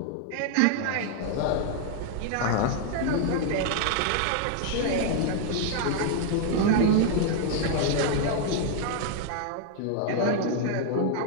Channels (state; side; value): different; both; correlation 0.00